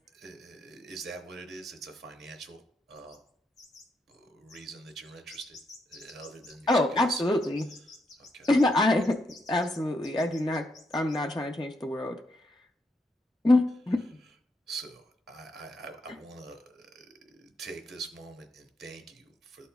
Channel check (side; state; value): both; normal; correlation 0.80